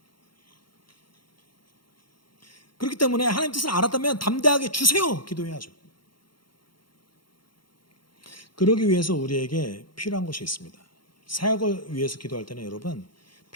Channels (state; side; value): late; right; 0.72 ms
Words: 그렇기 때문에 하나님 뜻을 알았다면 담대하게 주세요. 기도해야죠. 그러기 위해서 우리에게 필요한 것이 있습니다. 사역을 위해서 기도할 때는 여러분,